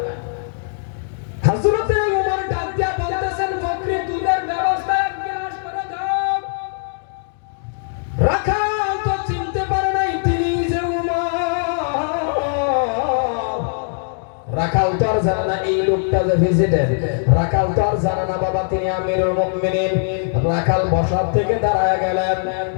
হযরতে ওমর ডাক দিয়া বলতেছেন বকরির দুধের ব্যবস্থা এক গিলাস করে দাও। রাখাল তো চিনতে পারে নাই তিনি যে ওমর। রাখাল তো আর জানে না এই লোকটা যে ভিজিটার। রাখাল তো আর জানে না বাবা তিনি আমিরুল মুমিনিন। রাখাল বসার থেকে দাঁড়ায় গেলেন,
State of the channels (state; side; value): silent; right; digital silence